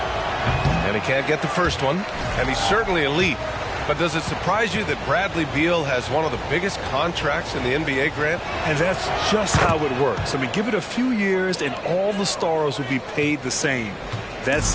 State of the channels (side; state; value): both; identical; correlation 1.00